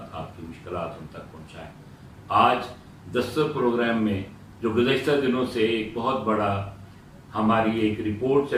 आपकी मुश्किलात उन तक पहुँचाएँ। आज दस्तक प्रोग्राम में जो गुज़श्ता दिनों से एक बहुत बड़ा हमारी एक रिपोर्ट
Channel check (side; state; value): both; identical; correlation 1.00